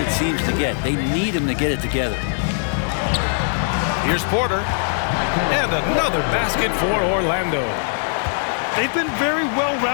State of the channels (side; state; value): right; silent; digital silence